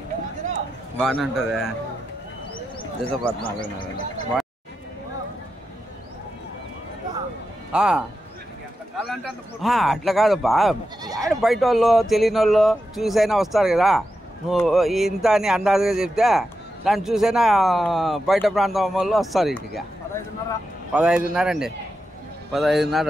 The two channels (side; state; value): both; normal; correlation 0.88